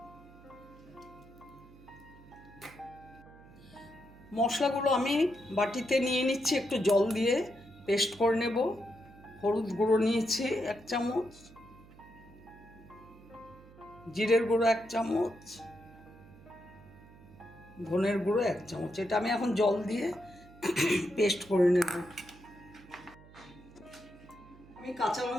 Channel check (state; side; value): noise; right; hum, 22 dB below the sound